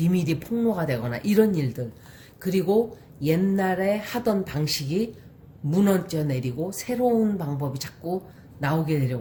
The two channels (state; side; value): identical; both; correlation 1.00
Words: 폭로가 되거나 이런 일들, 그리고 옛날에 하던 방식이 무너져 내리고 새로운 방법이 자꾸 나오게